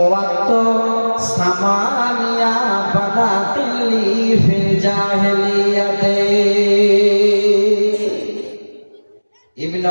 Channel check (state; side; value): inverted; both; correlation -1.00